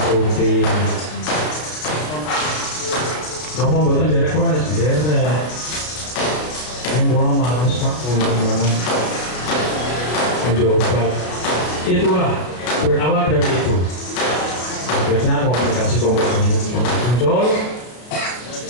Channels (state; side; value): late; right; 33 ms